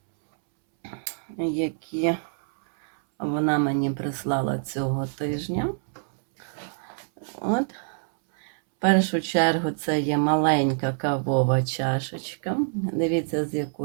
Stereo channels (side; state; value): left; silent; 61 dB below the other